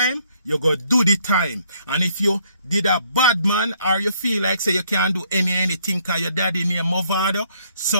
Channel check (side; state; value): both; inverted; correlation -0.67